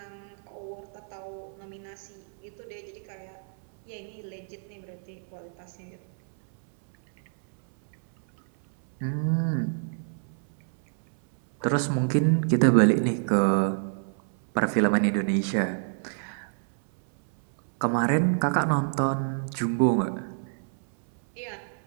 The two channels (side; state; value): left; silent; 60 dB below the other